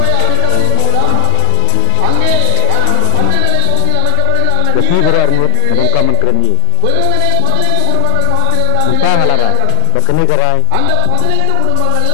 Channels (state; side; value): different; both; correlation 0.00